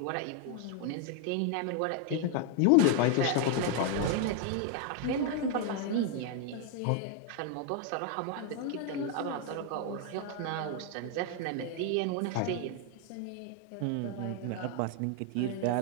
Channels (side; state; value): both; different; correlation 0.00